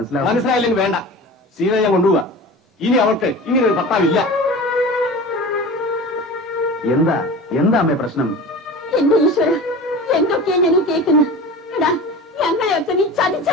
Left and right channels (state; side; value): normal; both; correlation 0.35